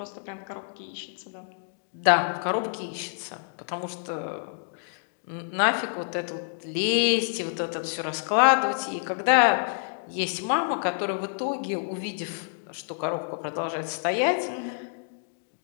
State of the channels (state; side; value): silent; right; digital silence